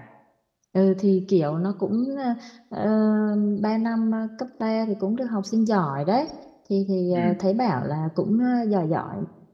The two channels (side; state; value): both; identical; correlation 1.00